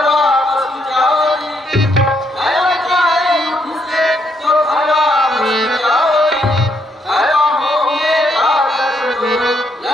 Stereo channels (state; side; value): normal; both; correlation 0.75